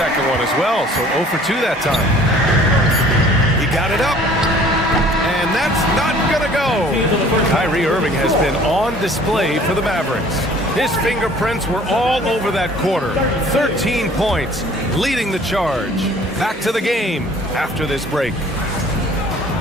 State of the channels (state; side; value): normal; both; correlation 0.52